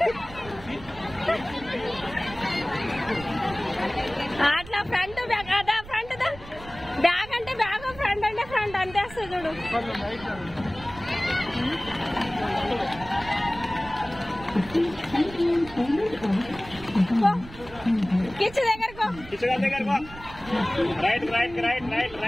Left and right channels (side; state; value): right; noise; rumble, 17 dB below the sound